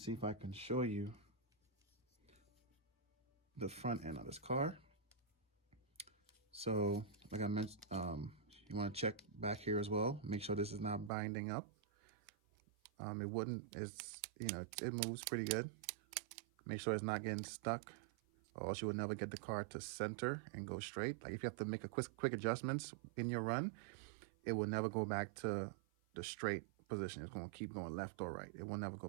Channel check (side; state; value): left; drops out; at 11.1 s